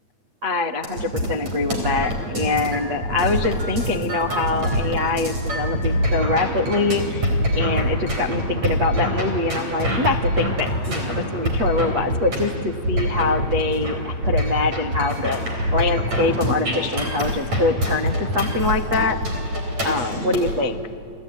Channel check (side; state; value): left; late; 8.8 ms